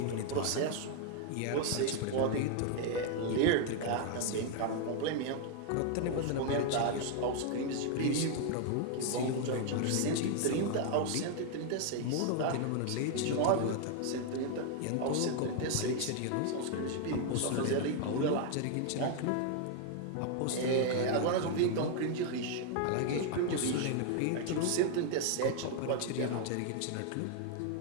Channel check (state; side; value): different; both; correlation 0.00